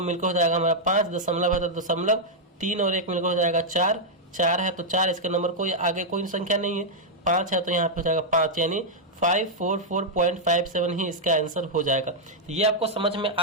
मिलकर हो जाएगा हमारा 5, दशमलव है तो दशमलव, 3 और 1 मिलकर हो जाएगा 4, 4 है तो 4, इसके नंबर कोई आगे कोई संख्या नहीं है, 5 है तो यहाँ पे हो जाएगा 5, यानी 544.57 ही इसका आंसर हो जाएगा। ये आपको समझ में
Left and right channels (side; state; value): both; normal; correlation -0.04